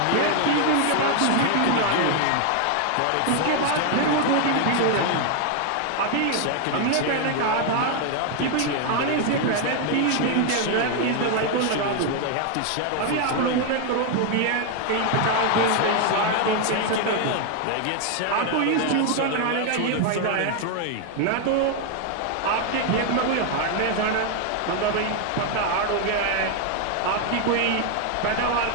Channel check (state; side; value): different; both; correlation 0.00